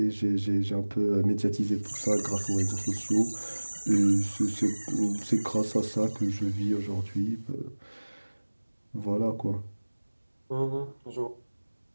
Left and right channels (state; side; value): inverted; both; correlation -1.00